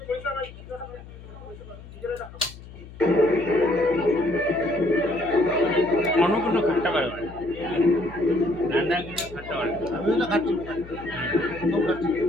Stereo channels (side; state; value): left; noise; hum, 17 dB below the sound